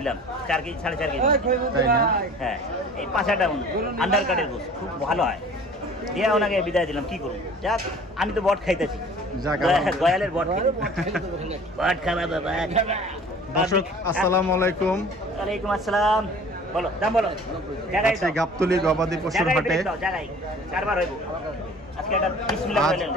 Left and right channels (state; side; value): normal; both; correlation 0.47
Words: 4 কেজি 4.5 কেজি হ্যাঁ এই 5-8টা আন্ডার কার্ডের গোশ খুব ভালো হয় দিয়া ওনাকে বিদায় দিলাম কি করুন যাক আমি তো বট খাইতেছি গয়ালের বট বট খাবা বাবা দর্শক আসসালামু আলাইকুম ওয়ালাইকুম আসসালাম বলো দাম বলো জায়গায় আজকে গাবতলী গবাদি পশুর হাটে জায়গায় কারবার হইব আজকে এটা বিসমিল্লাহ আজ বলেন